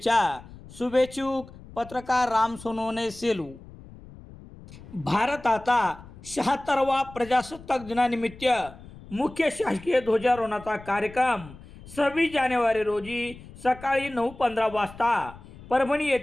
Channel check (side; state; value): left; noise; rumble, 18 dB below the sound